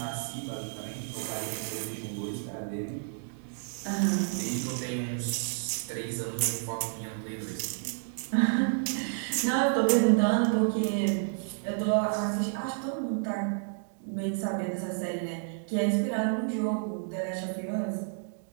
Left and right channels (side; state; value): left; silent; 57 dB below the other